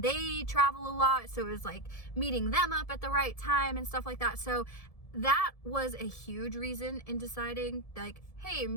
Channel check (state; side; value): late; right; 1.7 ms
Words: they travel a lot, so it was like meeting them up at the right time and stuff like that. So that was a huge reason in deciding, like, hey,